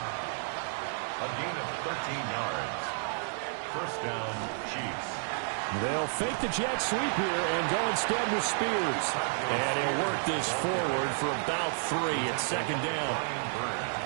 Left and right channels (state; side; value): silent; left; 56 dB below the other